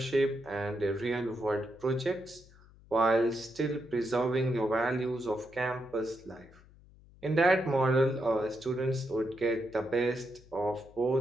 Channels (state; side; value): noise; left; hum, 25 dB below the sound